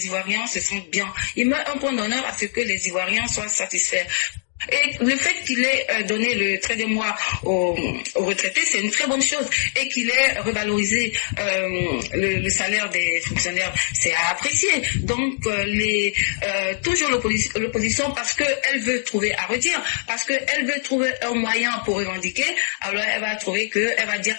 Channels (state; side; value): silent; right; digital silence